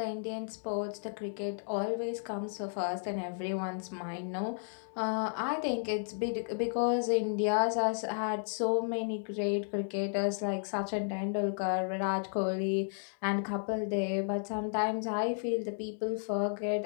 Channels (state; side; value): silent; right; digital silence